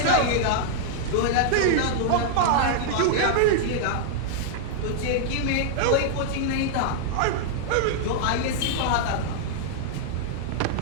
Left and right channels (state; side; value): different; both; correlation -0.01